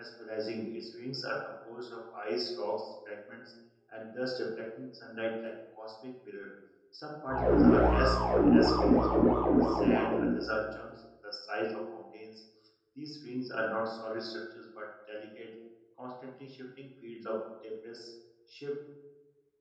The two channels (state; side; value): identical; both; correlation 1.00